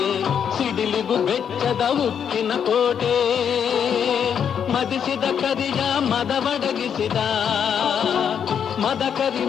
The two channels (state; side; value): quieter; right; 8.0 dB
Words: ಸಿಡಿಲಿಗು ಬೆಚ್ಚದ ಉಕ್ಕಿನ ಕೋಟೆ. ಮದಿಸಿದ ಕರಿಯ ಮದವಡಗಿಸಿದ ಮದಕರಿ